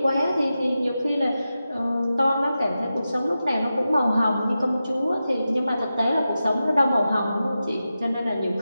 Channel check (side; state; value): both; inverted; correlation -0.92